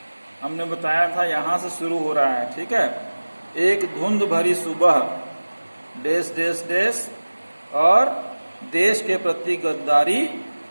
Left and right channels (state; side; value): inverted; both; correlation -1.00